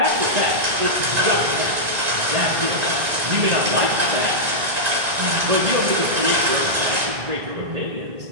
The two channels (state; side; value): late; left; 1.9 ms